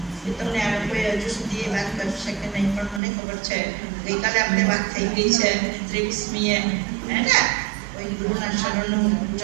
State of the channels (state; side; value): drops out; left; at 3.0 s